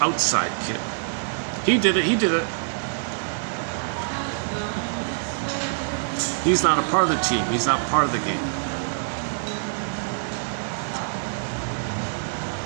kid. He did it. He's not a part of the team. He's not part of the game.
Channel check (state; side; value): silent; left; digital silence